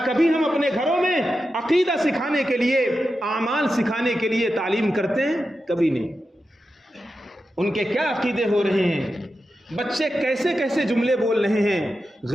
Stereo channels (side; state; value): both; normal; correlation 0.90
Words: کبھی ہم اپنے گھروں میں عقیدہ سکھانے کے لیے، اعمال سکھانے کے لیے تعلیم کرتے ہیں؟ کبھی نہیں. ان کے کیا عقیدے ہو رہے ہیں، بچے کیسے کیسے جملے بول رہے ہیں.